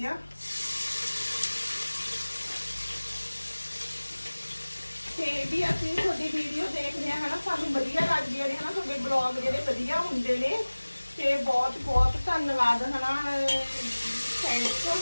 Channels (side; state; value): both; inverted; correlation -1.00